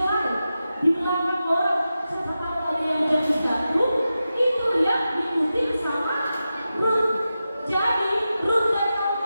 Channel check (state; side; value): inverted; both; correlation -0.92